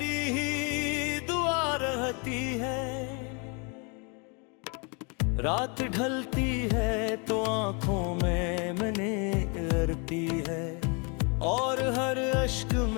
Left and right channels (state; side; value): quieter; right; 34.2 dB